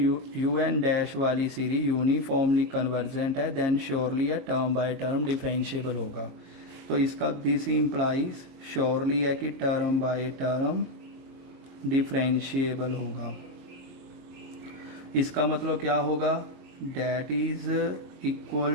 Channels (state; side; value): late; left; 22 ms